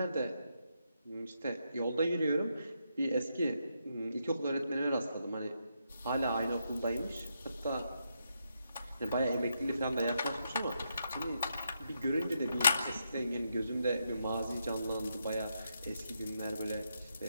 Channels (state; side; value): inverted; both; correlation -0.81